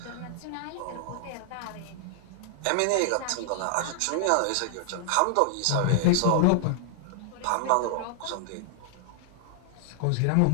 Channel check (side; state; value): both; different; correlation -0.01